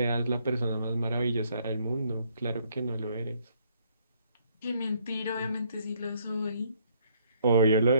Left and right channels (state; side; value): inverted; both; correlation -0.67